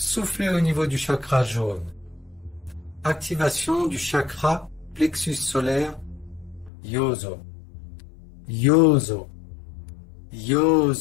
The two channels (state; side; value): drops out; right; at 6.7 s